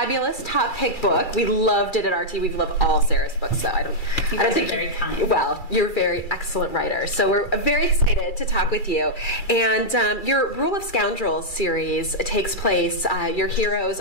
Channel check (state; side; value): late; right; 2.3 ms